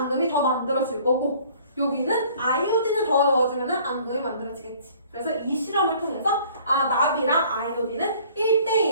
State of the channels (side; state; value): both; inverted; correlation -0.54